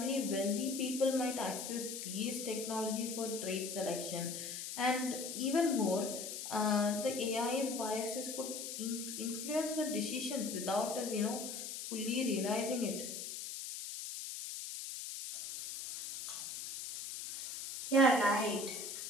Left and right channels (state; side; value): noise; left; hiss, 7 dB below the sound